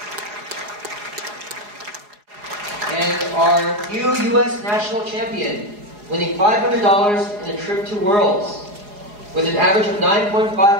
And our new U.S. national champion, winning $500 in a trip to Worlds, with an average of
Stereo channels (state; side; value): late; left; 4.8 ms